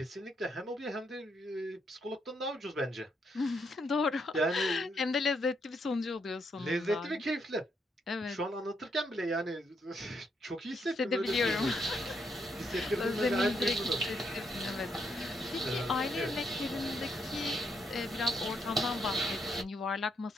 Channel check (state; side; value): normal; both; correlation 0.76